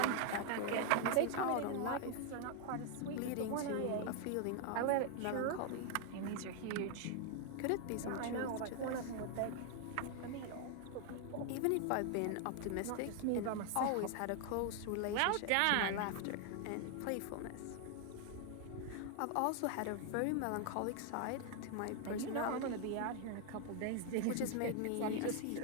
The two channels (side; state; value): both; different; correlation 0.00